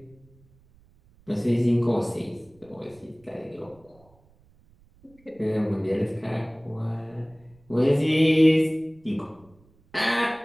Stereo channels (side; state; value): right; noise; rumble, 30 dB below the sound